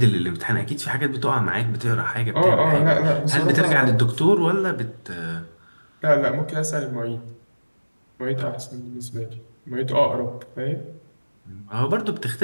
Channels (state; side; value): inverted; both; correlation -1.00